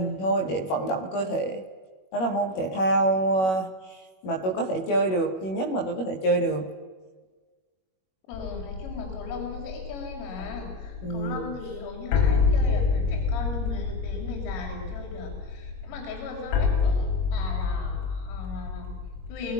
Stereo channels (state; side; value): late; right; 21 ms